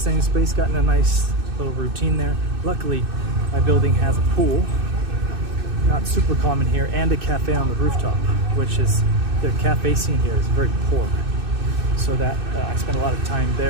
space, got in a nice little routine there. Luckily, my building has a pool, not super common here, and a cafe on the rooftop, which is, the cafe scene here is very poor. So that I spent a lot of time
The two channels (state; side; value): late; left; 2.6 ms